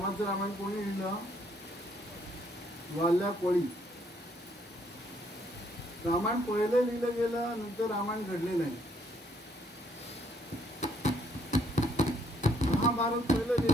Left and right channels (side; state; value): both; normal; correlation 0.68